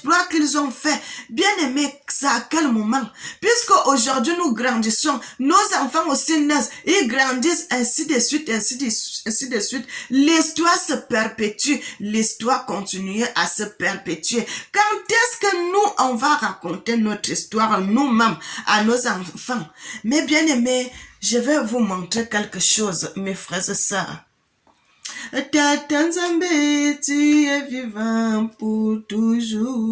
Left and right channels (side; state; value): both; identical; correlation 1.00